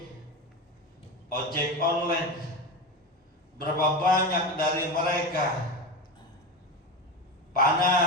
ojek online. Berapa banyak dari mereka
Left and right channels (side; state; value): both; normal; correlation 0.21